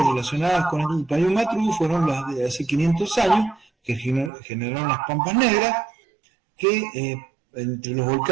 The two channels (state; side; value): drops out; left; at 4.3 s